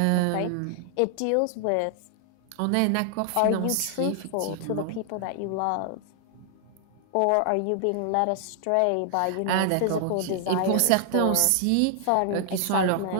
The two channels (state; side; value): different; both; correlation 0.00